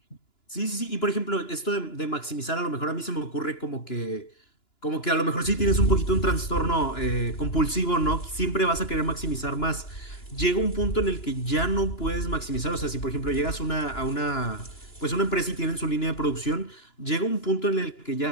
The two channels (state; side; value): late; right; 2.9 ms